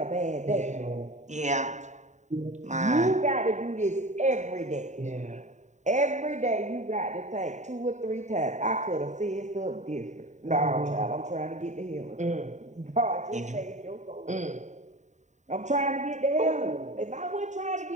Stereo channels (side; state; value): left; late; 0.34 ms